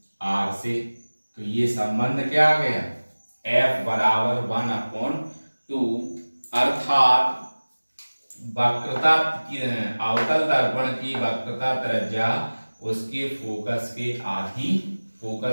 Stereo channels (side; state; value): both; inverted; correlation -1.00